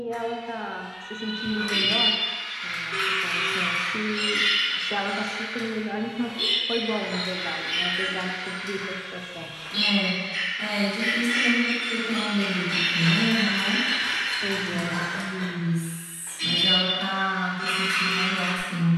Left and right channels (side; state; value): both; identical; correlation 1.00